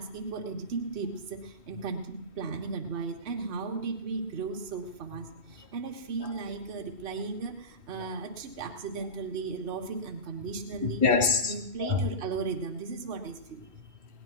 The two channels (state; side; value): late; left; 2.7 ms